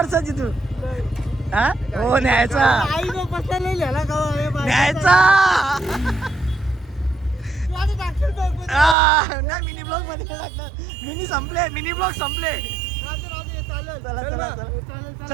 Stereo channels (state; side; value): drops out; left; at 9.0 s